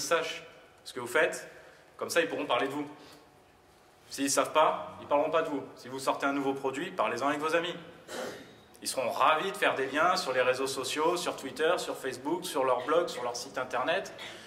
ce que vous faites, comme ça ils pourront parler de vous. S'ils ne savent pas, ils ne parleront pas de vous. Si vous sortez un nouveau produit, parlez-en avec vos amis. Ils seront ravis de faire des liens sur les réseaux sociaux, sur Twitter, sur Facebook, sur leur blog, sur leur site internet,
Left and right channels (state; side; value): identical; both; correlation 1.00